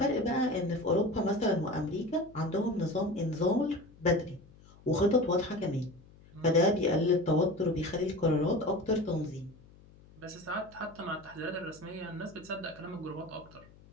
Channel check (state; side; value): noise; left; hum, 24 dB below the sound